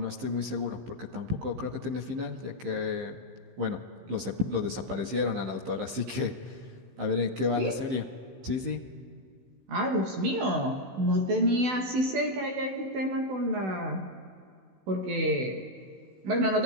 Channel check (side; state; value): left; late; 15 ms